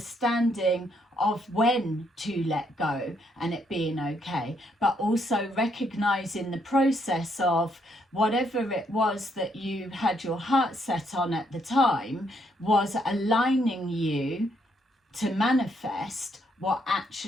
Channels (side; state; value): both; normal; correlation 0.73